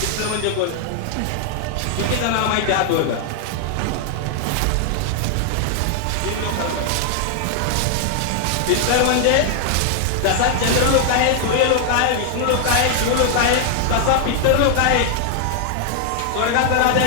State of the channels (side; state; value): both; different; correlation 0.00